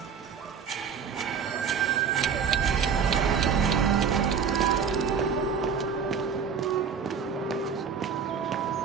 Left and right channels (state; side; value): quieter; left; 6.6 dB